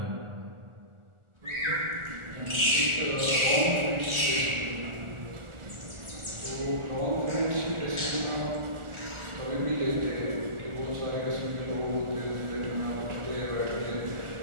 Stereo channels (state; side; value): late; left; 1.4 ms